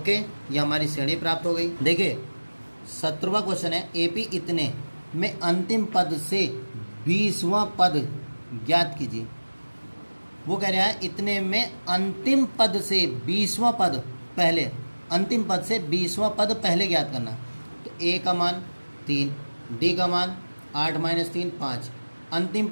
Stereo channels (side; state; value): both; inverted; correlation -1.00